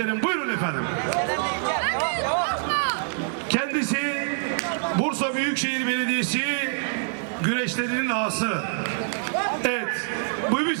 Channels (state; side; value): silent; left; 61 dB below the other